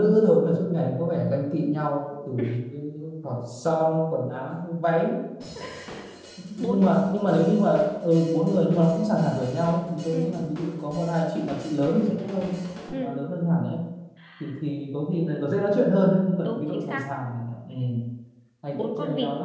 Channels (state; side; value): identical; both; correlation 1.00